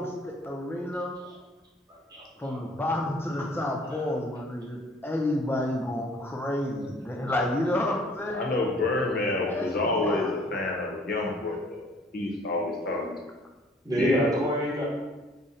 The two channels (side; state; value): both; normal; correlation 0.56